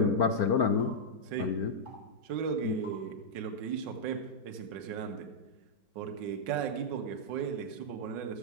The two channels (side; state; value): left; late; 5.5 ms